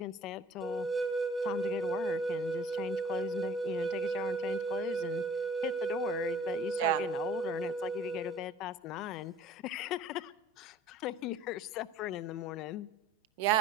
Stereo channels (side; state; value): both; normal; correlation 0.52